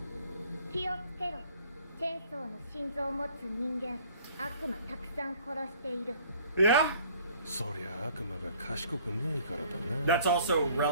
気をつけろ。チェーンソーの心臓を持つ人間、悪魔たくさん殺している。Yeah. そりゃ悪魔が賢くねえからだな。 That's also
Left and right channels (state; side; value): inverted; both; correlation -0.55